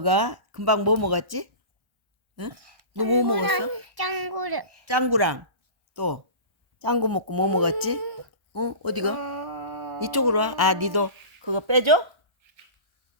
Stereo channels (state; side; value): late; left; 1.3 ms